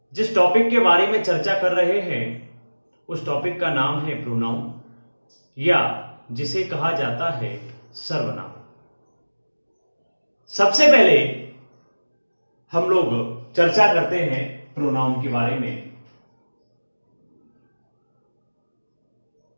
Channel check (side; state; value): both; inverted; correlation -1.00